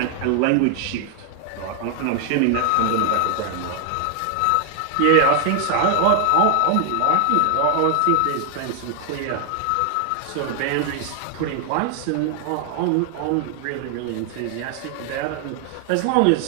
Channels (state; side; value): different; both; correlation 0.00